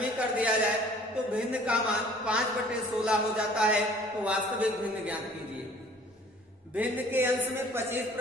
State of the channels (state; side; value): normal; both; correlation 0.52